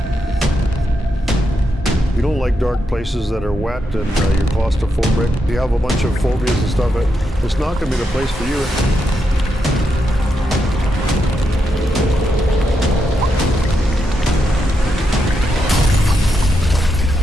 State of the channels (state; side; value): normal; both; correlation 0.83